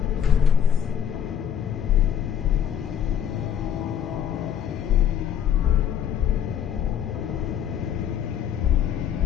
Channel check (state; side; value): quieter; right; 9.0 dB